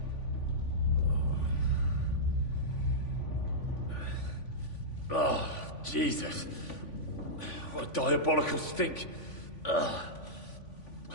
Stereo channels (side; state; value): right; late; 3.5 ms